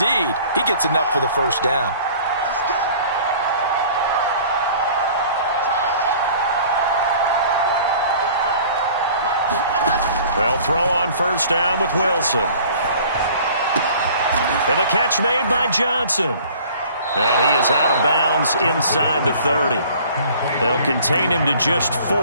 he gets enough for the first down. They'll throw on first down with Wilson. And the catch made by Johnson. And he is out of bounds inside the 30. They'll contain him to just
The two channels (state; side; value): inverted; both; correlation -0.50